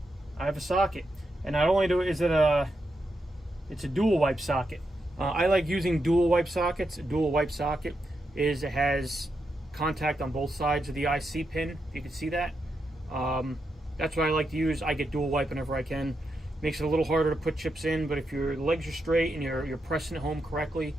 have a socket, and not only it's a dual wipe socket. I like using dual wipe sockets. A dual wipe socket it has contact on both sides of the IC pin. If you can see that. That's what I like to use. I get dual wipe whenever I can. Makes it a little harder to put chips in, but if your legs are straight and you're pressing it home correctly,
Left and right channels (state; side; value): normal; both; correlation 0.85